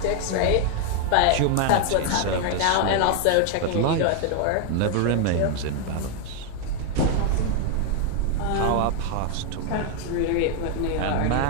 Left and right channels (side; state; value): both; different; correlation 0.00